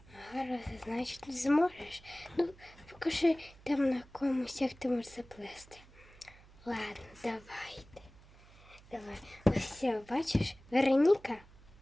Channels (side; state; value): right; noise; hum, 23 dB below the sound